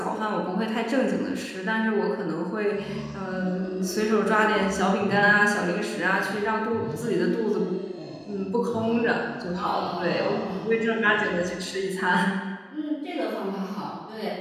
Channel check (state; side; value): identical; both; correlation 1.00